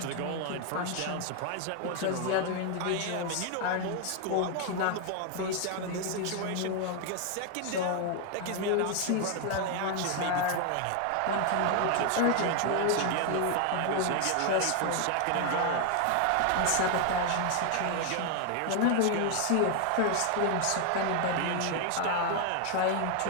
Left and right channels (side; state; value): both; different; correlation 0.00